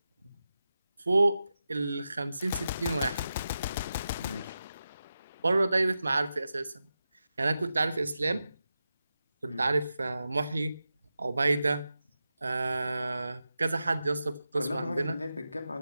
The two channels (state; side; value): inverted; both; correlation -0.91